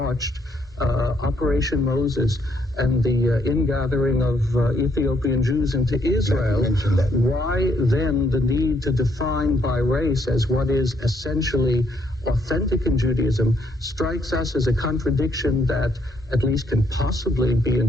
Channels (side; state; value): both; normal; correlation 0.71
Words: Operation Moses and the ingathering of Ethiopian Jews into Israel, why then the need to define by race as what is essentially authentic in Judaism strikes us as a contradiction that at least can possibly be